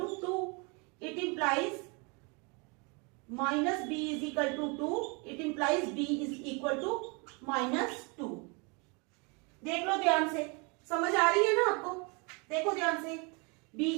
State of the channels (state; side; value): quieter; left; 31.6 dB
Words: to 2. It implies -b is equal to 2, it implies b is equal to -2। देख लो ध्यान से, समझ आ रही है ना आपको? देखो ध्यान से, b